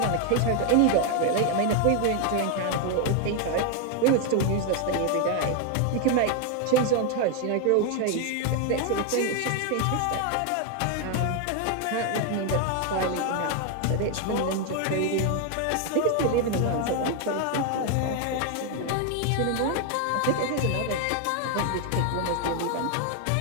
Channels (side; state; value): both; different; correlation 0.01